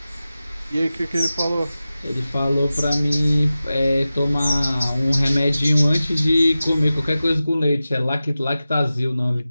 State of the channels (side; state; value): both; inverted; correlation -0.95